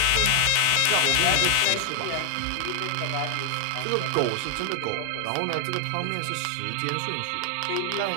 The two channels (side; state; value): both; different; correlation 0.00